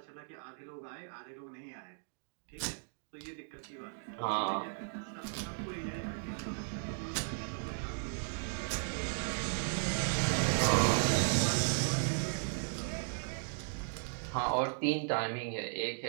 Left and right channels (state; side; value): silent; left; digital silence